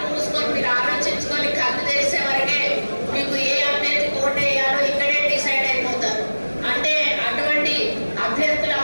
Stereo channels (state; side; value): inverted; both; correlation -1.00